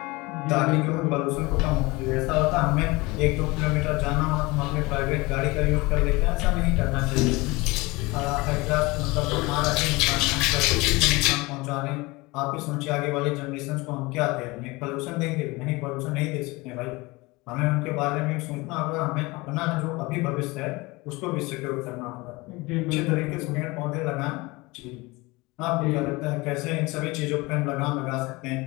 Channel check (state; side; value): quieter; right; 23.3 dB